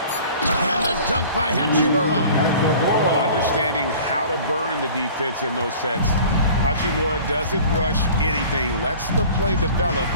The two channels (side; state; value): both; inverted; correlation -0.45